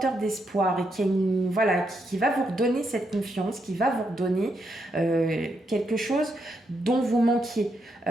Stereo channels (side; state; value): both; normal; correlation 0.80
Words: d'espoir et voilà, qui va vous redonner cette confiance, qui va vous redonner quelque chose dont vous manquiez.